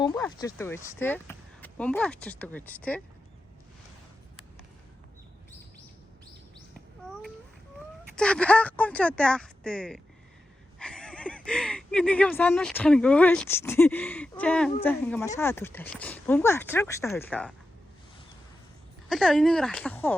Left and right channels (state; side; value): normal; both; correlation 0.91